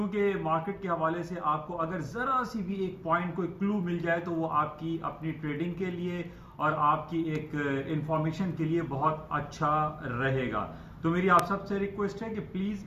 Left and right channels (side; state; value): both; identical; correlation 1.00